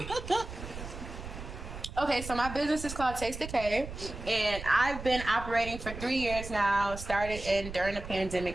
Okay, so my business is called Taste Decay, and I've been operating for 3 years now. Started during the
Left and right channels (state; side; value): noise; right; rumble, 10 dB below the sound